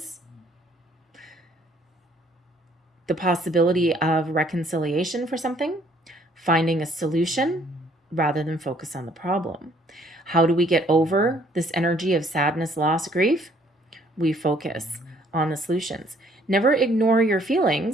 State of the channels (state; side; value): normal; both; correlation 0.62